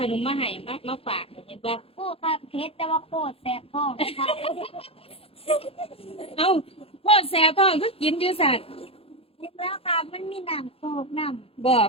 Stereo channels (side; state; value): right; late; 0.27 ms